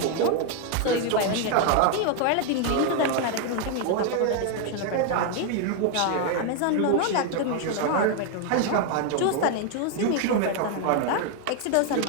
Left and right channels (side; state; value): both; different; correlation 0.00